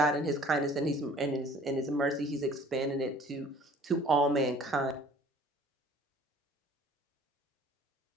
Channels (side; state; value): both; normal; correlation 0.51